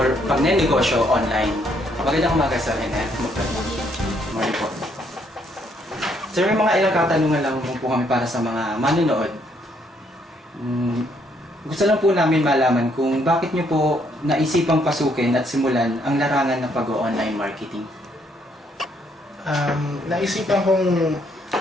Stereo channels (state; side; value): normal; both; correlation 0.70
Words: pagnenegosyo online. Magandang umaga sa akin, Morning po. Sir, may mga ilang katanungan lang po kami para sa mga manonood. Gusto lang po namin malaman kung bakit niyo po naisipang pasukin at simulan ang larangan ng pag-online marketing. Naisipan kong